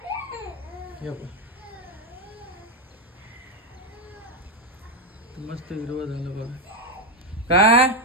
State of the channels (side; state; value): both; normal; correlation 0.06